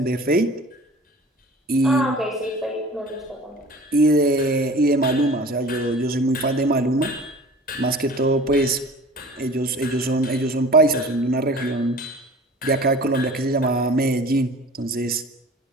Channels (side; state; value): both; normal; correlation 0.42